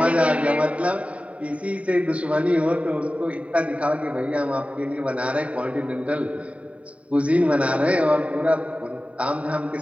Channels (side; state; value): left; late; 0.066 ms